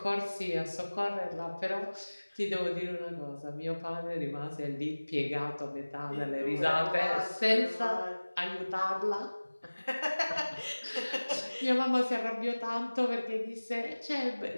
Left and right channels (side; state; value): both; inverted; correlation -1.00